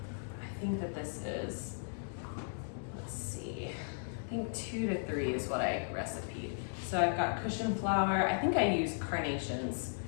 I think that this is, let's see, I think 2 to 3 is what I recipeed. So I've got cushion flower. I think I use carnations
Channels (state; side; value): silent; right; 54 dB below the other